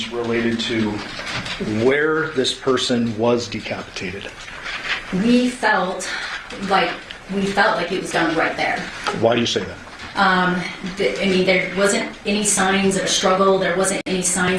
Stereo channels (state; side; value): identical; both; correlation 1.00